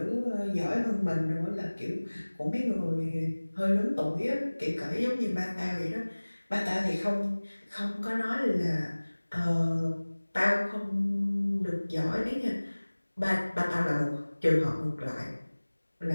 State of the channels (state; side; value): inverted; both; correlation -1.00